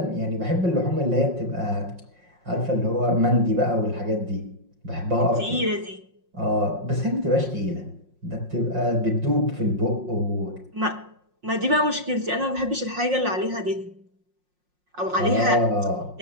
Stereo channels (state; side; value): late; left; 5.5 ms